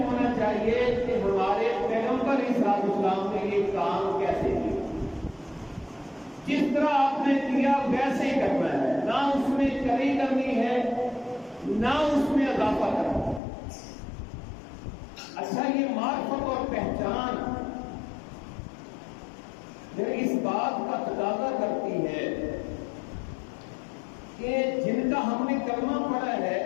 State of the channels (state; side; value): drops out; right; at 13.4 s